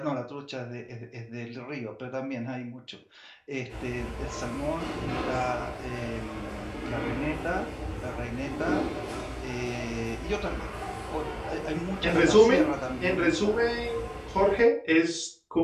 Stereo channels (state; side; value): identical; both; correlation 1.00